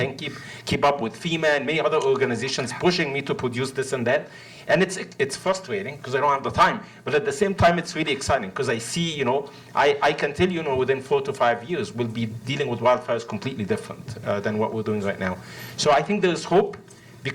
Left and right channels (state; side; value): identical; both; correlation 1.00